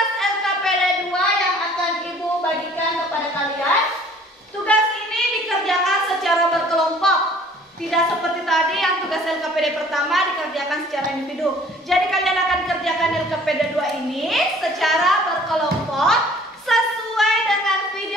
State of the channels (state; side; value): normal; both; correlation 0.53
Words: LKPD 2 yang akan Ibu bagikan kepada kalian. Tugas ini dikerjakan secara berkelompok. Tidak seperti tadi yang tugas LKPD pertama dikerjakan secara individu. Jadi kalian akan kerjakan LKPD 2 ini secara berkelompok sesuai dengan